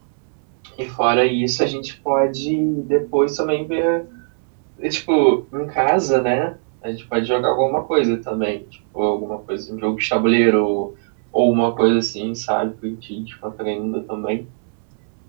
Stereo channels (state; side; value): silent; left; digital silence